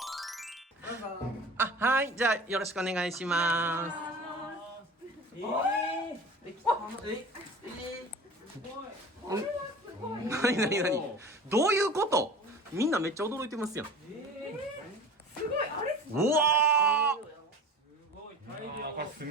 どうぞ。はい、じゃあ、よろしくお願いします。何どういうこと？みんなめっちゃ驚いてますやん。すごい、あれうわこれ住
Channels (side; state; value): both; normal; correlation 0.38